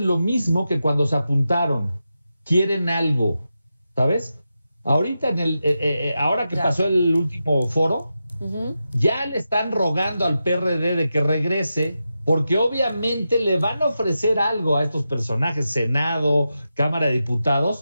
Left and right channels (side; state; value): both; inverted; correlation -0.89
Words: lo mismo que cuando se apuntaron. Quieren algo, ¿sabes? Ahorita, ahora que pasó el último foro, ya le están rogando al PRD de que regrese, porque obviamente le van a ofrecer algo a estos personajes, Senado, Cámara de